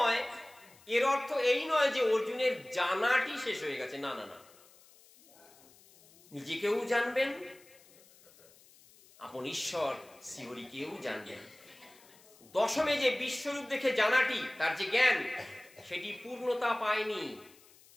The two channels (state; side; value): noise; left; hiss, 26 dB below the sound